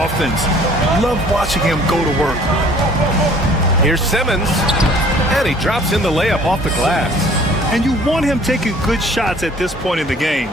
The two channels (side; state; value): both; normal; correlation 0.54